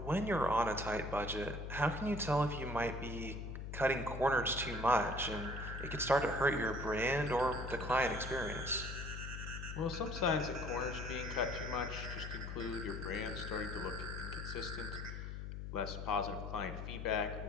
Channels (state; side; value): noise; left; hum, 7 dB below the sound